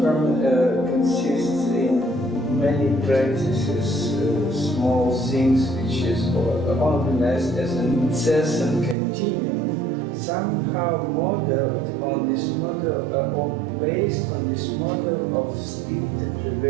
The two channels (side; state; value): left; drops out; at 9.0 s